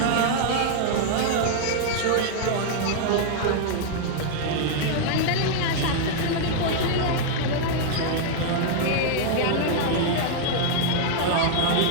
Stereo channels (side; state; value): both; different; correlation -0.01